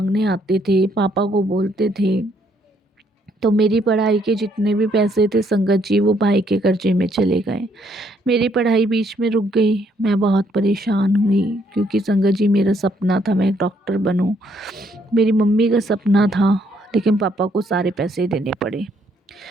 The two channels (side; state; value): both; normal; correlation 0.70